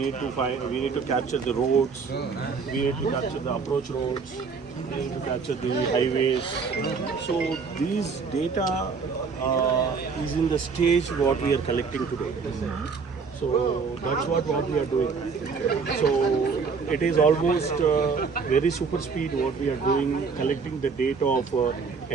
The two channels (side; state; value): left; quieter; 5.2 dB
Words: need to capture the roads, we need to capture the approach roads, we need to capture the highways. So these data is in the stage what we are collecting today. So that's what we are doing. So it is almost very super speed what we are doing, collecting the data of